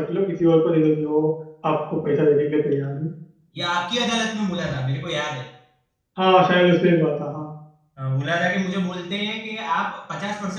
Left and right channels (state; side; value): identical; both; correlation 1.00